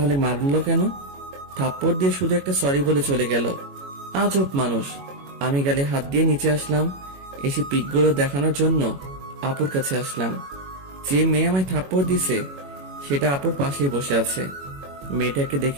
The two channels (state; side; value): late; left; 21 ms